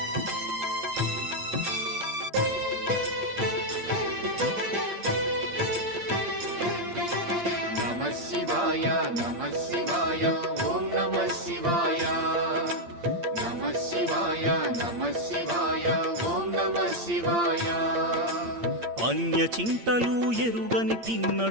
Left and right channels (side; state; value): left; late; 8.7 ms